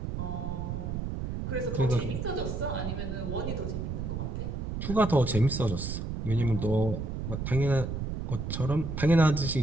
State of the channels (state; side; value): noise; right; rumble, 4 dB below the sound